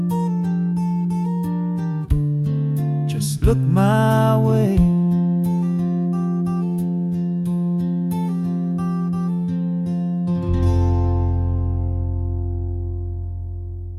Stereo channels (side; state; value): both; identical; correlation 1.00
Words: Just look my way.